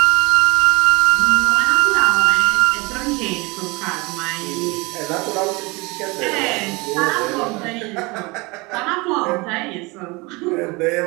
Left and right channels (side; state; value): left; quieter; 25.7 dB